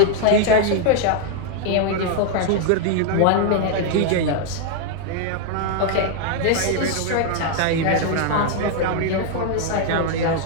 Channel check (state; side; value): different; both; correlation 0.00